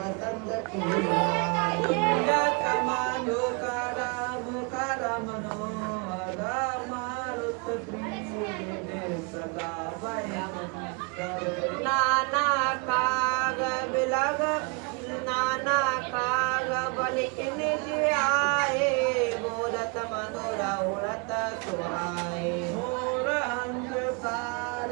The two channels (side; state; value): left; quieter; 32.4 dB